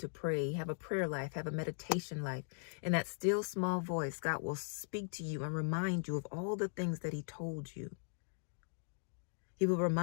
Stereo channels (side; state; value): right; silent; digital silence